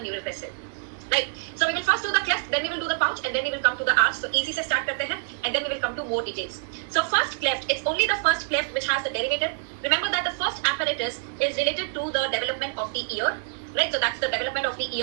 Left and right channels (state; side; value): silent; left; digital silence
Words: neural crest cell. Right. So we will first do the cleft, then we will do the pouch, and then we will come to the arch. So easy se start karte hain, and then we will come to more details. So first cleft, it's only the first cleft which has the derivative. Remember that the first apparatus is related to the development of the ear. Right, so that's the development of the